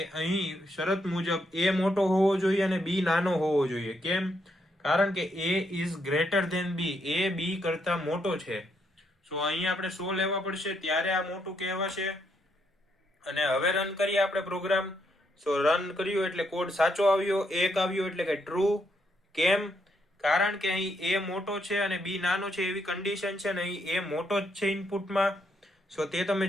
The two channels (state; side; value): normal; both; correlation 0.76